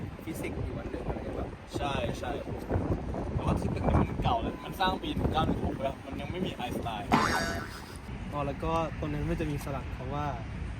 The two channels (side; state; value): both; identical; correlation 1.00